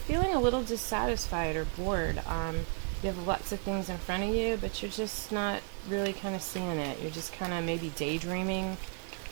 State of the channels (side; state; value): left; quieter; 38.9 dB